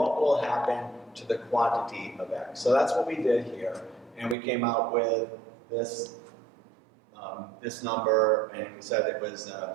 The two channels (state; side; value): drops out; left; at 4.4 s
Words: will happen to the quantity of X? So that's what we did here, and we came out with this this number, and we said it was